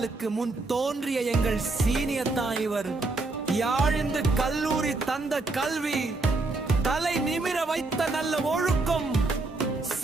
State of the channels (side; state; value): left; quieter; 3.3 dB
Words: முன் தோன்றிய எங்கள் சீனியர் தான் இவர். யாழிந்து கல்லூரி தந்த கல்வி, தலை நிமிர வைத்த நல்ல ஒழுக்கம்,